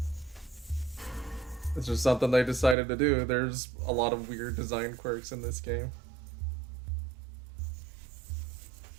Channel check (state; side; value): drops out; left; at 2.8 s